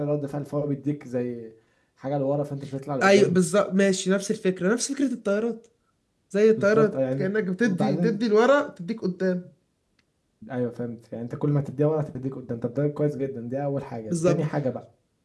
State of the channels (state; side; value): identical; both; correlation 1.00